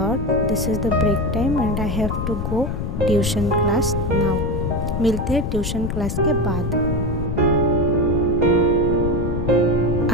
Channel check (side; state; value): left; noise; rumble, 2 dB below the sound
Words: this is the break time and I have to go tuition class now. मिलते हैं ट्यूशन क्लास के बाद।